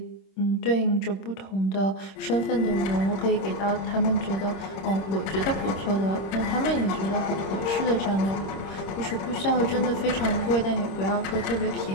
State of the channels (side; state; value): right; late; 26 ms